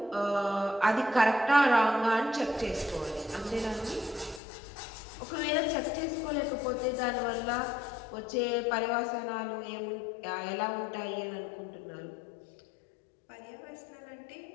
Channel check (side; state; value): right; drops out; at 4.4 s